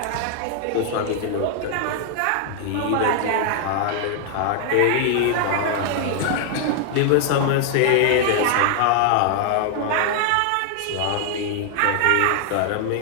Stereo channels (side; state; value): both; different; correlation 0.00